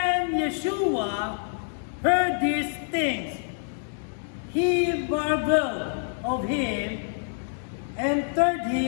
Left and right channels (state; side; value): silent; right; digital silence